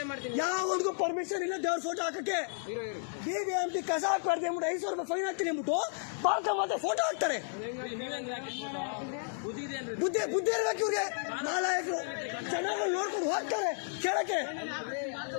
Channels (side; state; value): right; silent; digital silence